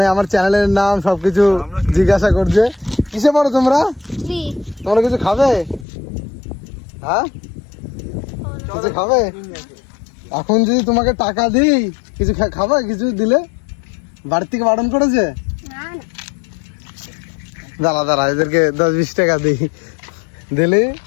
আমার চ্যানেলের নাম সবকিছু জিজ্ঞাসা করছে। কিসে পড়ো তোমরা? তোমরা কিছু খাবে? হ্যাঁ, কিছু খাবে? এখন যদি তোমাকে টাকা দিই কিছু খাবে? কিছু দিলে বাড়ি থেকে বারণ করেছে? দাঁড়া দাঁড়া, এদেরকে 10-20 টাকা দিই, দিলে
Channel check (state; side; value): drops out; right; at 5.9 s